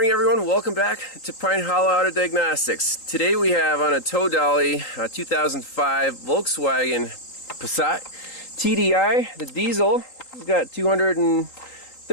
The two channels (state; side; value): late; right; 3.8 ms